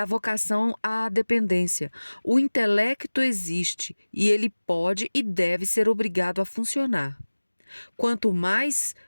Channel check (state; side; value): inverted; both; correlation -1.00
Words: vocação à dependência. O intelecto existe e ele pode e deve ser obrigado a funcionar. Quanto mais